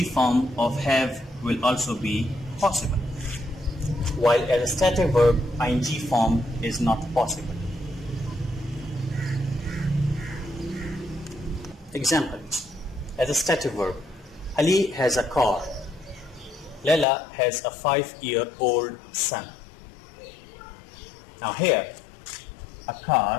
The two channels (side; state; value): right; drops out; at 17.1 s